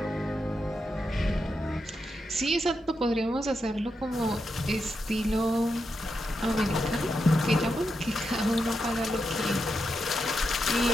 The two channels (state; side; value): normal; both; correlation 0.86